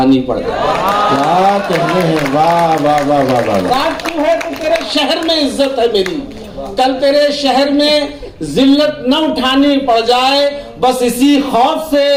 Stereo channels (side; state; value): both; identical; correlation 1.00